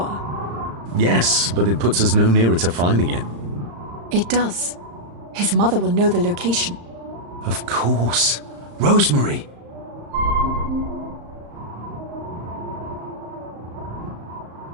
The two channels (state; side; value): late; left; 35 ms